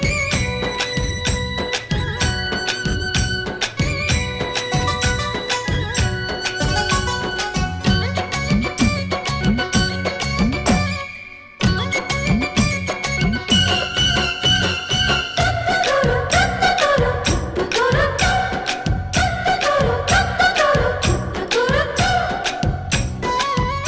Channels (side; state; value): both; identical; correlation 1.00